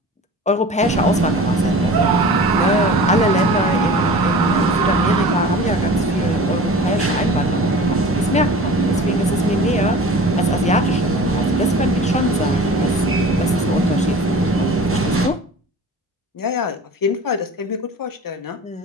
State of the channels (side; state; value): both; normal; correlation 0.40